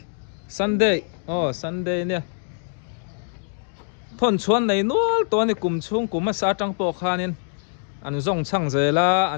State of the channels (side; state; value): right; silent; 63 dB below the other